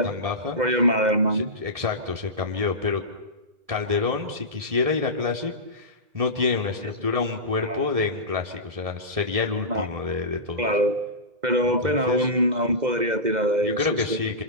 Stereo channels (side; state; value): left; late; 1.7 ms